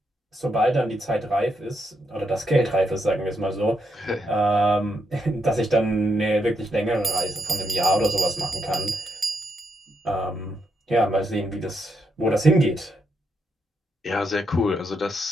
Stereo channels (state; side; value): normal; both; correlation 0.80